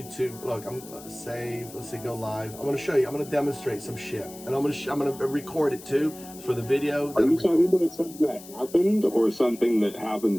Look, I'm save. Let's see, go live. I'm going to show you. I'm going to demonstrate some shit, and I'm going to record it too for the video. Are you talking about something that happened or something that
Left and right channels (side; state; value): left; noise; hiss, 17 dB below the sound